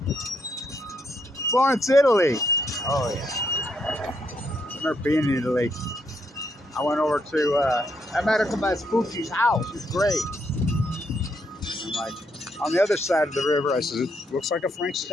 Florence, Italy. Oh, yeah. I remember being in Italy. I went over to, I met her at my Spooky's house. It was great. I'm like, on the other side of the river, I said, it looks like a Frank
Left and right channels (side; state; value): both; normal; correlation 0.76